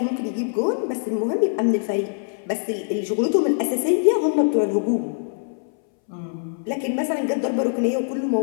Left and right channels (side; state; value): right; silent; 61 dB below the other